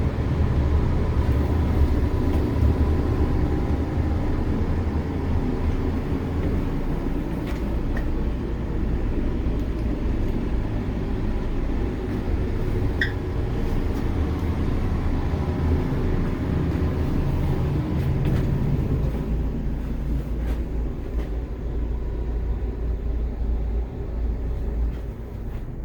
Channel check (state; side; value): identical; both; correlation 1.00